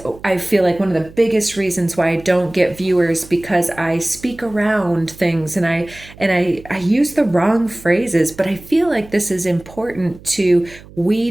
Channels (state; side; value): noise; right; hum, 20 dB below the sound